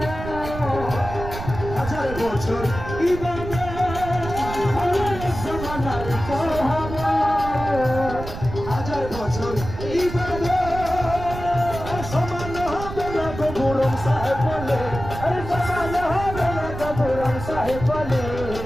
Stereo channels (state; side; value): noise; right; rumble, 9 dB below the sound